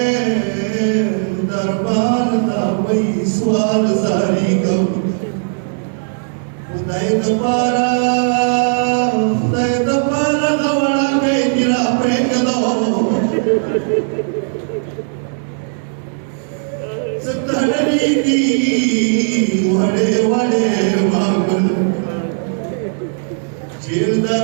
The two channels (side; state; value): left; silent; digital silence